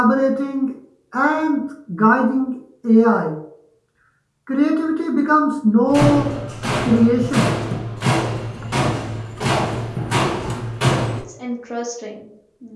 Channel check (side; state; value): both; identical; correlation 1.00